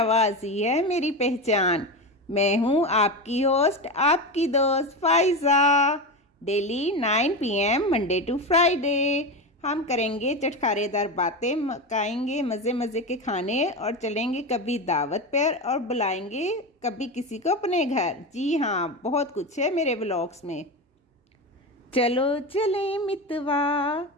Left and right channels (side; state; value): both; normal; correlation 0.19